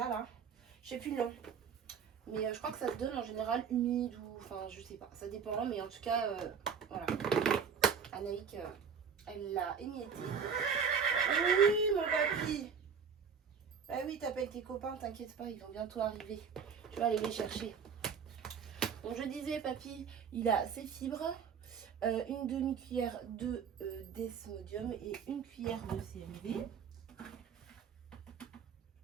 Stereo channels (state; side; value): quieter; left; 6.6 dB